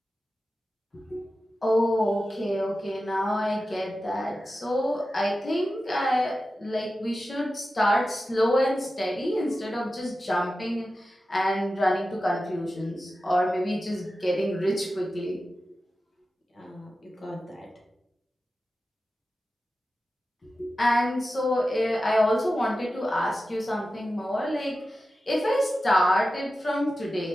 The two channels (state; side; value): normal; both; correlation 0.93